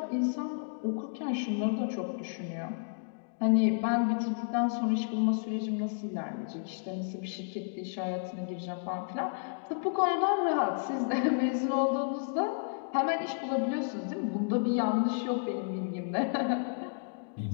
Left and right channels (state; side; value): silent; right; digital silence